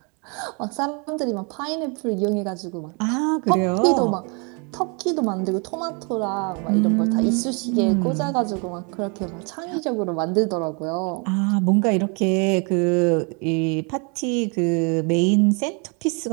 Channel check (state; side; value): quieter; left; 34.2 dB